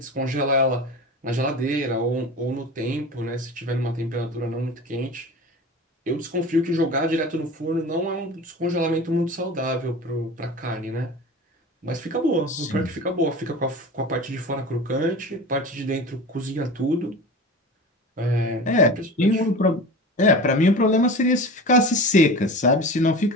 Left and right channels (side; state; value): both; normal; correlation 0.33